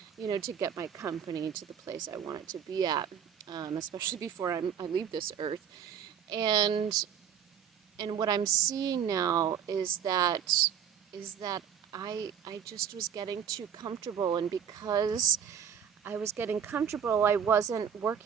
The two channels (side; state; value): left; quieter; 8.3 dB